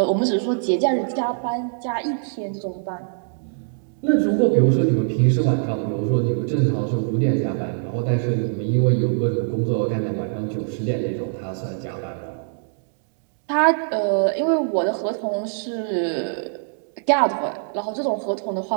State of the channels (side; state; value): left; silent; digital silence